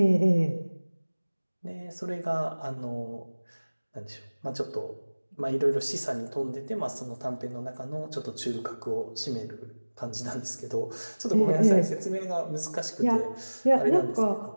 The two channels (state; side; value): inverted; both; correlation -1.00